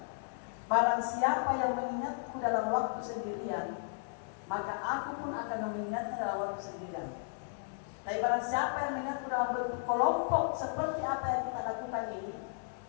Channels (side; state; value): right; silent; 55 dB below the other